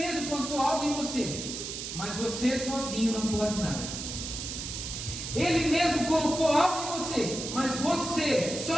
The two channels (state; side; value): noise; right; hiss, 6 dB below the sound